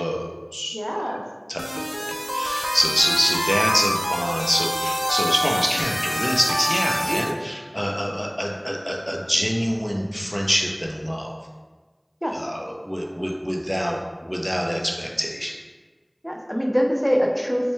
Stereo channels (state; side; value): identical; both; correlation 1.00